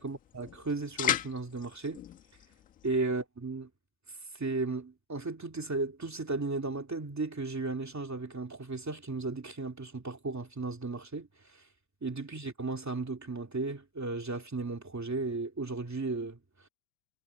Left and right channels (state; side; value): normal; both; correlation 0.08